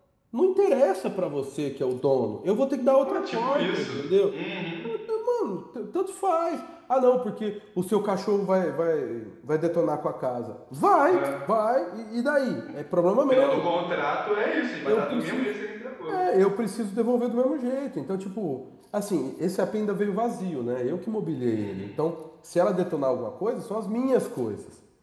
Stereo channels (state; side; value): identical; both; correlation 1.00